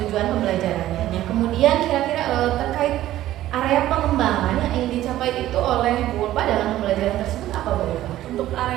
pembelajarannya. Yang kemudian kira-kira terkait area pengembangan yang ingin dicapai itu oleh Bu Ulfa dalam pembelajaran tersebut apa Bu Ulfa? Untuk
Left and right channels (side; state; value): left; quieter; 14.1 dB